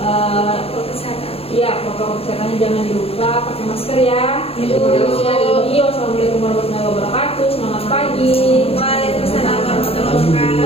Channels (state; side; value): late; right; 0.28 ms